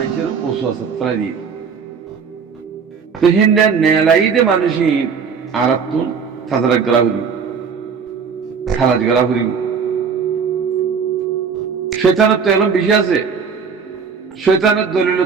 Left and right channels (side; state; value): left; quieter; 6.0 dB